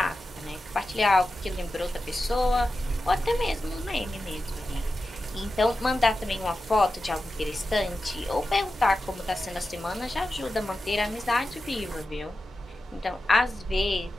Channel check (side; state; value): both; normal; correlation 0.92